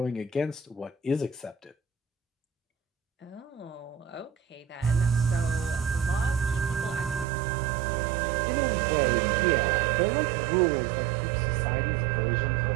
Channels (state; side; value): drops out; left; at 7.2 s